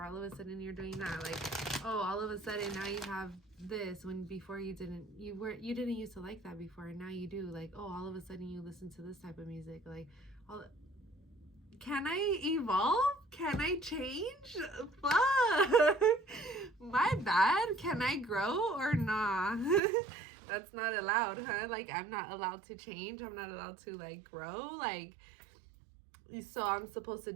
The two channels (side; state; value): left; drops out; at 19.8 s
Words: all of a sudden you're doing that. Like, oh, all of a sudden now you have this, when before you didn't used to like that before, and now you do. Like, oh, all of a sudden you listen to this type of music. Like, can I evolve? Can I change? Fuck. My bad. Can I grow or nah? That's not allowed, huh? Like, I'm not allowed to change. I'm not allowed to, like, grow. Like, so I'm supposed to